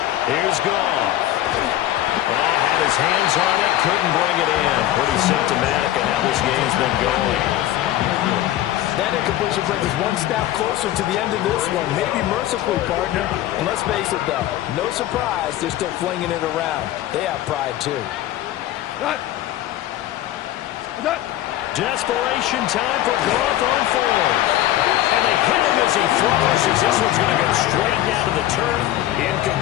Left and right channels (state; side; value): quieter; right; 13.9 dB